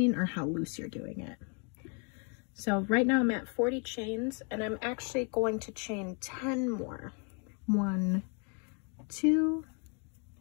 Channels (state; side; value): quieter; right; 37.3 dB